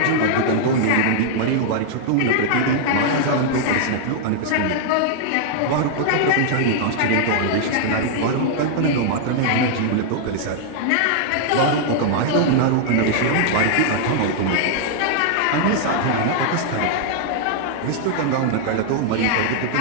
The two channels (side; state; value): both; different; correlation -0.01